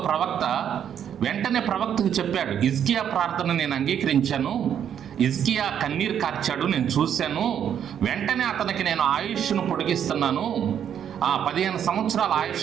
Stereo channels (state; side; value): quieter; left; 9.1 dB